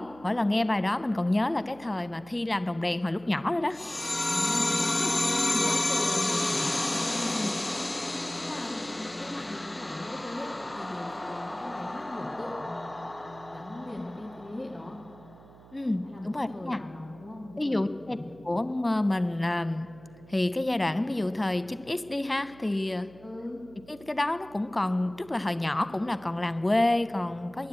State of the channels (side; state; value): right; noise; hum, 22 dB below the sound